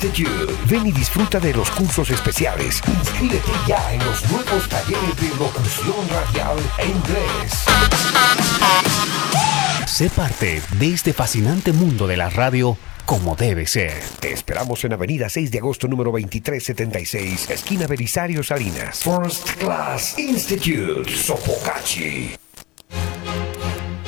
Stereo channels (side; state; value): right; quieter; 21.9 dB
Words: Ven y disfruta de los cursos especiales. Inscríbete ya en los nuevos talleres de locución radial e inglés. Sé parte de este fascinante mundo de la radio como debe ser. Te esperamos en Avenida 6 de agosto, número 2376, esquina Belisario Salinas. First Class Institute, Sopocachi.